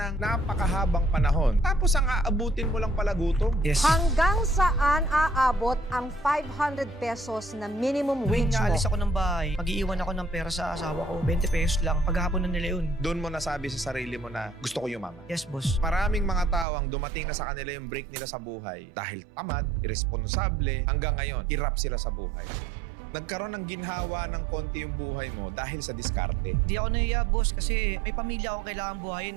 napakahabang panahon. Tapos ang aabutin mo lang pala gutom. Yes. Hanggang saan aabot ang 500 pesos na minimum Tuwing wage mo? naalis ako ng bahay, mag-iiwan ako ng pera sa asawa ko, 20 pesos lang. Paghapon na nila yun. Doon mo nasabi sa sarili mo na gusto ko yumaman. Yes, boss. Maraming mga tao ang dumating na sa kanila yung break nila sa buhay dahil tamad, irresponsable, hanggang ngayon, hirap sila sa buhay. Nagkaroon ng ginhawa ng konti yung buhay mo dahil sa diskarte. Hindi ako nahiya, boss, kasi may pamilya akong kailangan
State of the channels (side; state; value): left; drops out; at 16.7 s